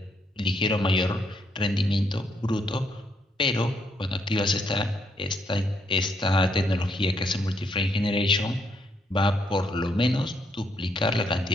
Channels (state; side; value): normal; both; correlation 0.74